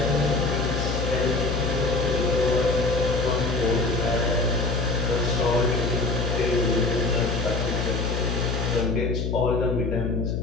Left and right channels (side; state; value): left; noise; hum, 1 dB below the sound